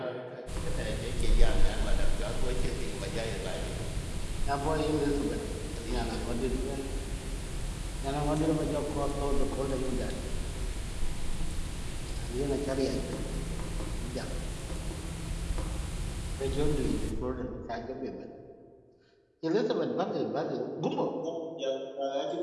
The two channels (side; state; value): both; identical; correlation 1.00